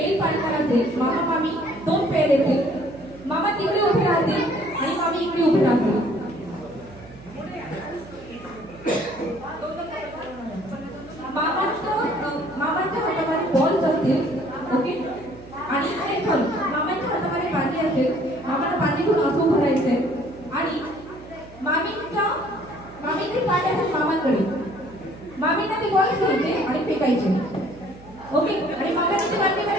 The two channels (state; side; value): noise; right; hum, 20 dB below the sound